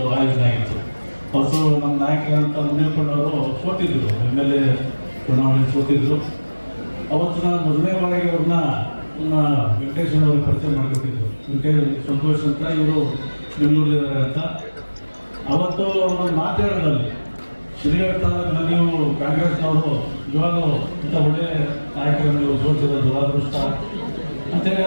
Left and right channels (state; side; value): inverted; both; correlation -1.00